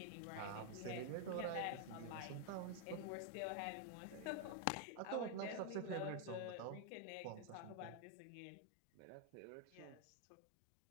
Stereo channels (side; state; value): both; different; correlation 0.00